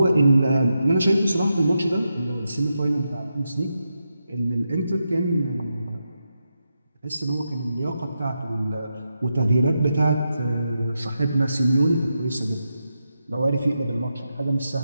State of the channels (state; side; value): inverted; both; correlation -0.86